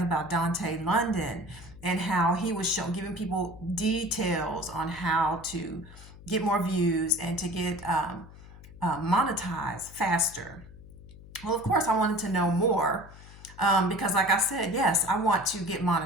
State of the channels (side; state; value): left; noise; hum, 18 dB below the sound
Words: about Dante London and how he was giving people details on how to get more views and to get monetize faster. Well, of course, I wanted to know more because, like I said, yes, I want to get